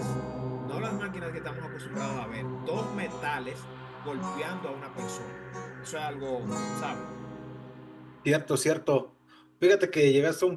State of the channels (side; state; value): both; identical; correlation 1.00